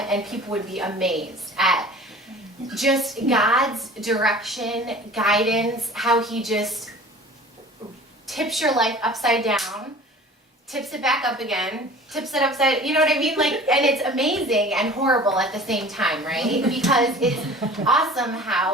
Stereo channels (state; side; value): normal; both; correlation 0.43